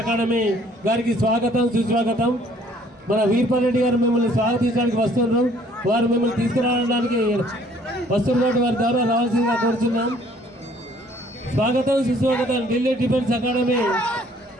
అకాడమీ గారికి స్వాగతం సుస్వాగతం. మన వీర్పాల్ రెడ్డి గారు మిమ్మల్ని స్వాగతించడానికి వస్తున్నారు. వారు మిమ్మల్ని తీసుకురావడానికి వస్తున్నటువంటి వారి ద్వారా రావాల్సిందిగా కోరుతున్నాం. స్వాగతం సుస్వాగతం. ఢిల్లీ డిఫెన్స్ అకాడమీ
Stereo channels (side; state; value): both; normal; correlation 0.59